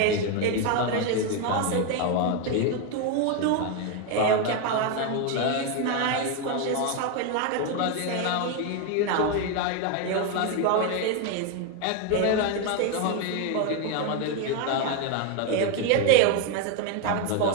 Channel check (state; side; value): different; both; correlation 0.01